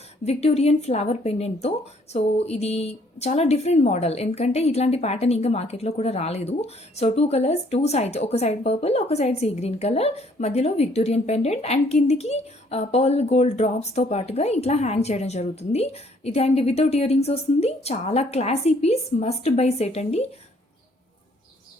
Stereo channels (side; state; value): both; normal; correlation 0.63